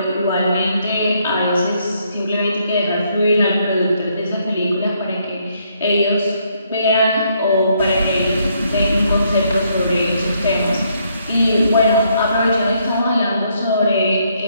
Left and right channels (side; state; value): both; inverted; correlation -0.72